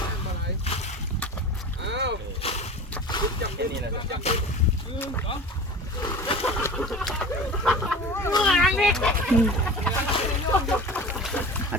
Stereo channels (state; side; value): normal; both; correlation 0.36